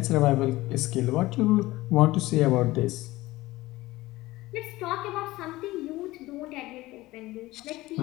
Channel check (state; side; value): quieter; right; 18.5 dB